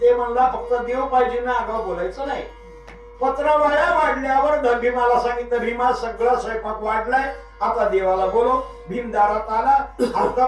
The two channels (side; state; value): both; identical; correlation 1.00